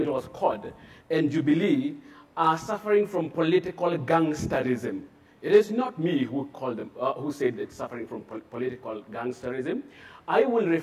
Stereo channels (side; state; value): both; identical; correlation 1.00